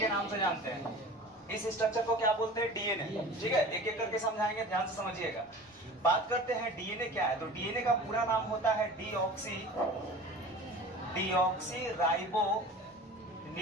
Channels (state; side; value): normal; both; correlation 0.39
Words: नाम से जानते हैं। इस स्ट्रक्चर को क्या बोलते हैं? डीएनए। ठीक है, एक एक करके समझाएंगे, ध्यान से समझिएगा। बात करते हैं डीएनए क्या है। तो डीएनए का पूरा नाम होता है डीऑक्सी राइबो